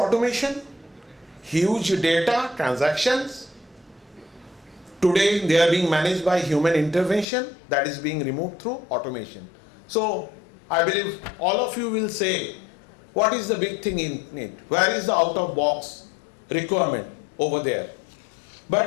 huge data, transactions. Today they are being managed by human intervention that is being removed through automation. So I believe all of you will say, what is the big thing in it? Where is the out-of-box requirement over there?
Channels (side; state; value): right; drops out; at 7.2 s